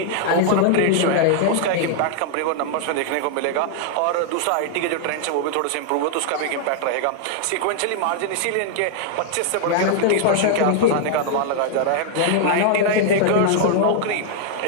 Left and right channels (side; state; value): both; different; correlation -0.01